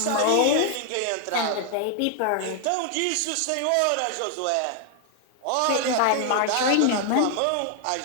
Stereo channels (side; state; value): both; different; correlation 0.00